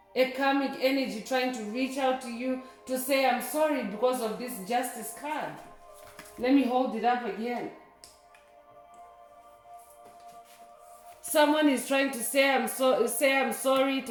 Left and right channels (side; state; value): both; identical; correlation 1.00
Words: A karmic energy trying to reach out to you to say, I'm sorry because of this justice card. Let me hold it up again. Someone is trying to say I'm sorry